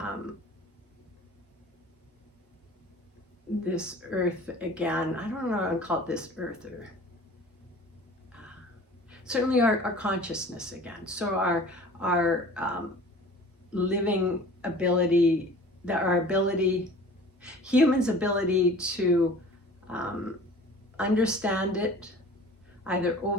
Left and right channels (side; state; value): both; normal; correlation 0.44